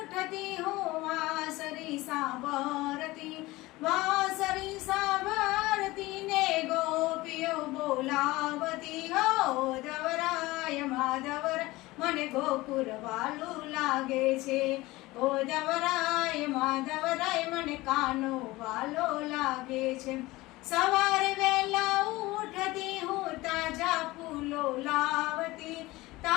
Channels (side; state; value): right; quieter; 19.8 dB